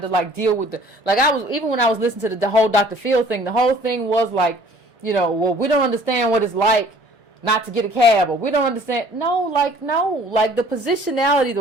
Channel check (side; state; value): both; normal; correlation 0.53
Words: of like deal with even when I was listening to the whole Dr. Phil thing, the whole thing was like, well, we don't understand what it's like not to get a cab, or we don't understand. No, the positionality,